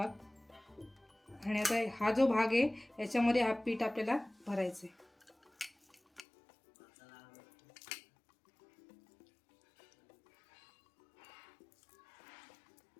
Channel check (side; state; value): right; drops out; at 6.2 s